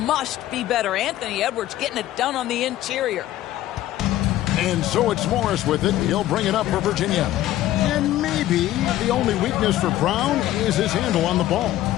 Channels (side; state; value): right; quieter; 14.1 dB